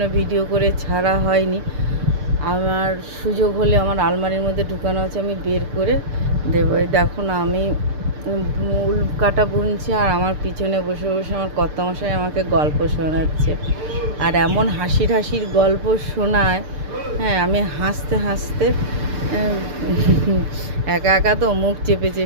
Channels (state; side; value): late; left; 6.7 ms